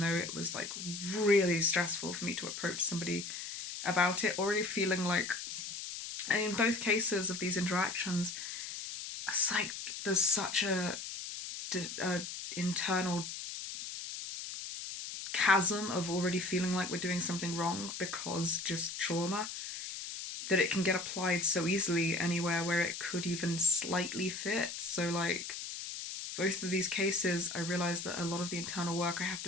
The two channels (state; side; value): noise; left; hiss, 7 dB below the sound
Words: it was like really stressful for me to approach somebody about it, already feeling like, and in both cases of these interactions, it's like there's such a internal chasm of already feeling like we're doing something wrong because just trauma, that it can get applied so easily anywhere where it could even slightly fit. So like, both of these cases, I realised that a lot of the internal work I have